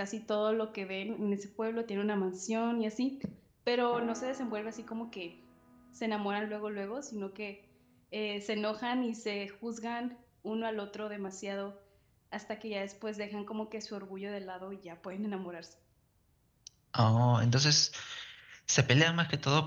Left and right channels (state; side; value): identical; both; correlation 1.00